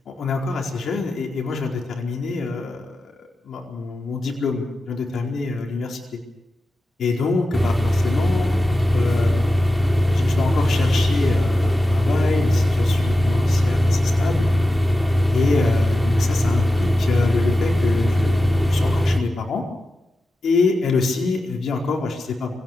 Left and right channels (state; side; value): normal; both; correlation 0.92